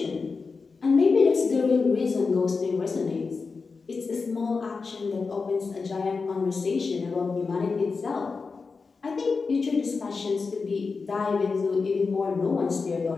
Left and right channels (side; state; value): right; quieter; 4.6 dB